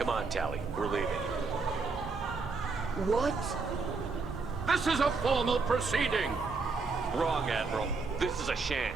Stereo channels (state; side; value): quieter; left; 4.3 dB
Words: on, Tali. We're leaving. What? This is a formal proceeding! Wrong, Admiral. This is a sham.